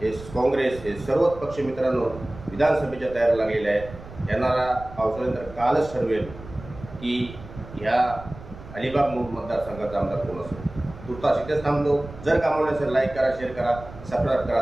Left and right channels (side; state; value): right; noise; rumble, 16 dB below the sound